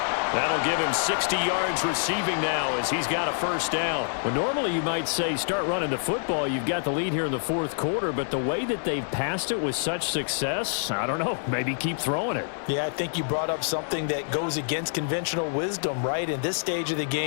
That'll give him 60 yards receiving now as he's got a first down. Well, normally you might say start running the football. You've got the lead here in the fourth quarter, but the way that they've passed it with such success, I don't know, maybe keep throwing it. Yeah, I think you brought up something that goes against conventional wisdom, right? In this stage of the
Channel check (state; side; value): silent; right; digital silence